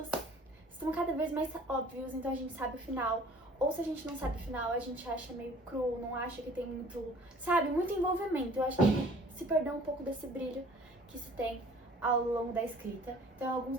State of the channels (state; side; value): normal; both; correlation 0.51